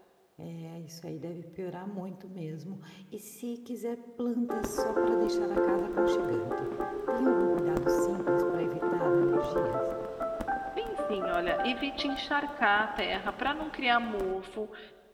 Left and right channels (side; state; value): both; identical; correlation 1.00